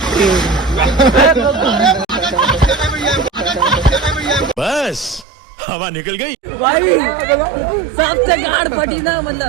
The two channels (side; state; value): left; drops out; at 5.2 s